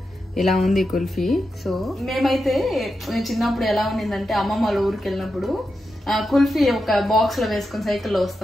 ఇలా ఉంది కుల్ఫీ. సో మేమైతే చిన్నప్పుడు ఎలా ఉండిందంటే అమ్మమ్మ వాళ్ళ ఊరికి వెళ్ళినప్పుడు కుల్ఫీ ఒక బాక్స్ లో వేసుకుని సైకిల్లో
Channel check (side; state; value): both; normal; correlation 0.88